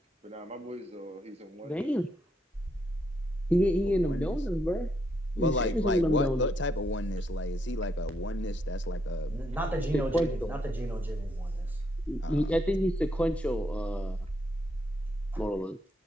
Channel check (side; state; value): both; normal; correlation 0.76